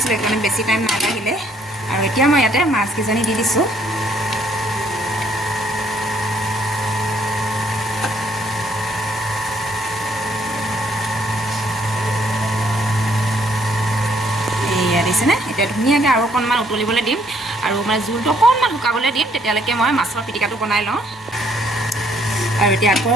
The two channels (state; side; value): normal; both; correlation 0.66